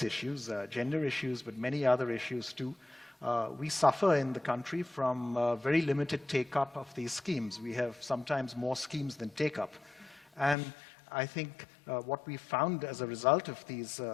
issues, gender issues, but many other issues too. We suffer in the country from very limited take-up of these schemes. We have sometimes more schemes than take-up. And I think what we found as a result of this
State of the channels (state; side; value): drops out; right; at 10.6 s